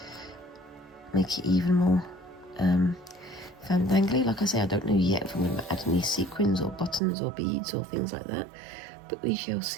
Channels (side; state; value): left; drops out; at 7.0 s